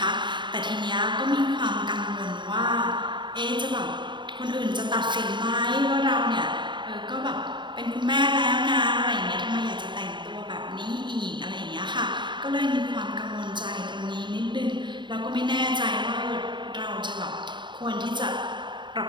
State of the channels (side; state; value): left; late; 0.23 ms